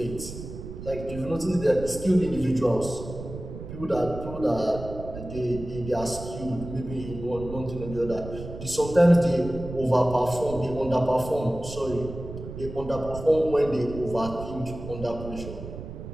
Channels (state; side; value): noise; right; rumble, 10 dB below the sound